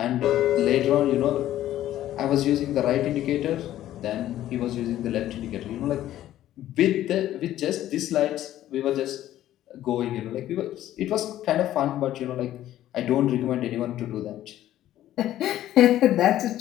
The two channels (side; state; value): right; quieter; 13.1 dB